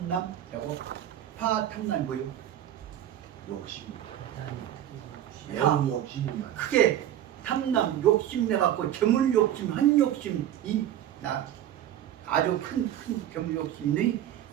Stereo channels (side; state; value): left; quieter; 11.5 dB